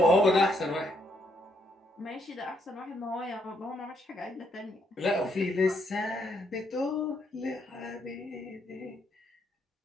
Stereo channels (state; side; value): normal; both; correlation 0.74